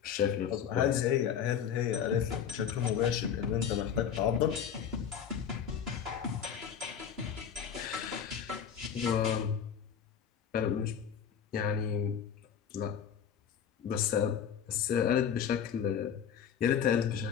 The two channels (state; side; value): quieter; right; 8.2 dB